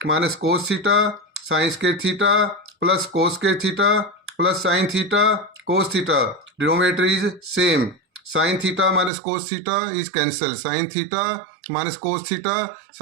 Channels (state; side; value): drops out; left; at 9.1 s